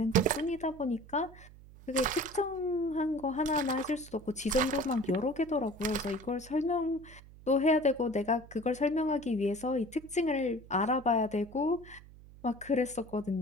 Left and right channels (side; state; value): right; noise; hum, 20 dB below the sound